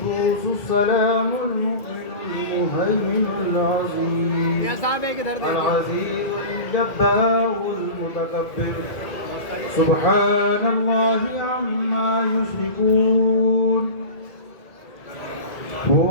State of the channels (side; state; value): right; late; 2.2 ms